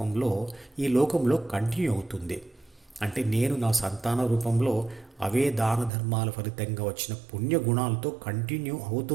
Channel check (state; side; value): drops out; left; at 5.9 s